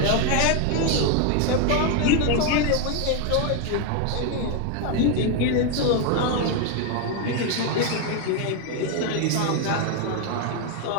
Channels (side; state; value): both; different; correlation 0.01